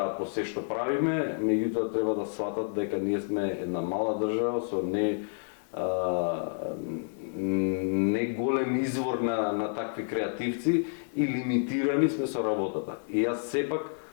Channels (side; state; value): right; silent; digital silence